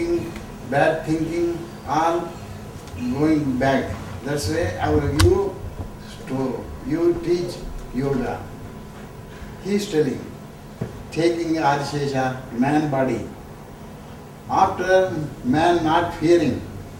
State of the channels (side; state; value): both; identical; correlation 1.00